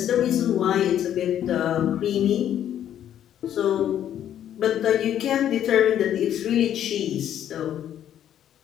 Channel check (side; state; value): right; quieter; 10.6 dB